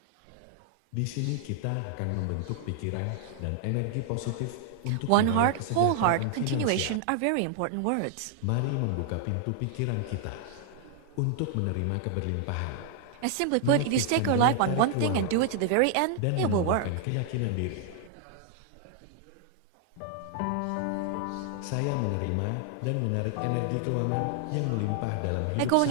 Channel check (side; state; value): both; different; correlation 0.00